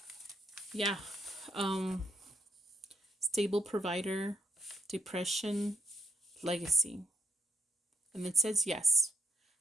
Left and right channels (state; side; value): normal; both; correlation 0.79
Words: yeah. Stable provider, depression, legacy. And it says yes.